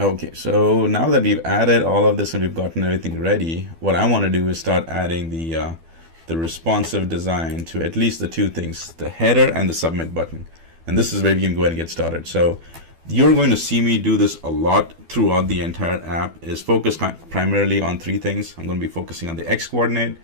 so now that we've added all of this and we've gotten everything ready, what I want to do is start adding the responsive design to at least the two things, the header and the submit button. And this is where we can go ahead and get started. So you're going to see me do this a lot throughout the entire app, is focused primarily on three things. I'm going to be focusing on the X coordinate.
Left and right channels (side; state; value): left; late; 12 ms